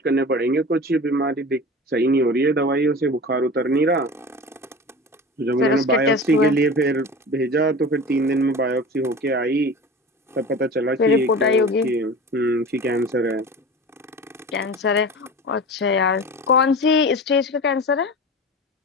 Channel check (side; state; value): both; normal; correlation 0.34